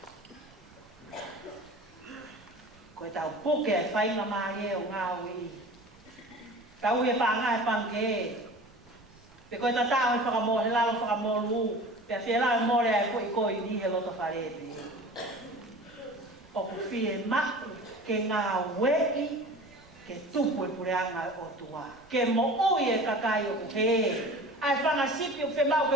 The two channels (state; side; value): noise; right; rumble, 27 dB below the sound